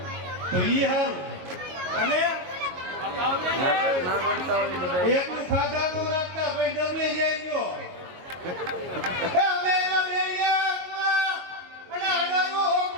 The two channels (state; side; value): late; left; 22 ms